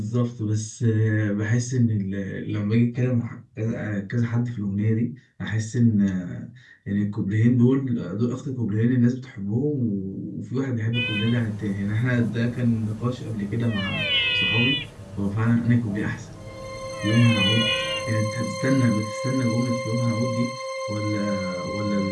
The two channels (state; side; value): identical; both; correlation 1.00